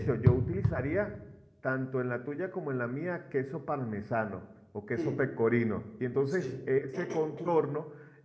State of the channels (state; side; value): identical; both; correlation 1.00